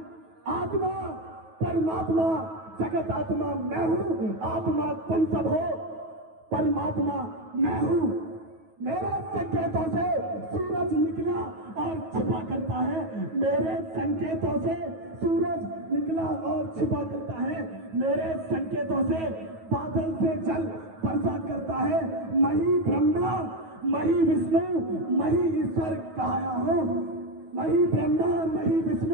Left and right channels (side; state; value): left; late; 9.3 ms